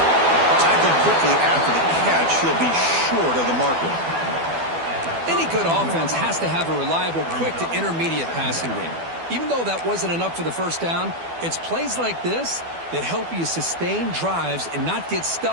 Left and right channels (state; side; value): late; left; 12 ms